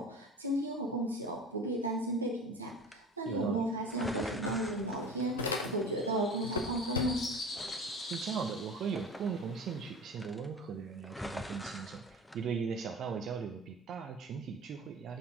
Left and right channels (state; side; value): normal; both; correlation 0.35